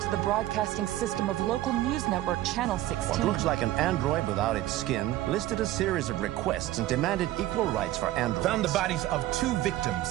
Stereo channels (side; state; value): left; quieter; 15.2 dB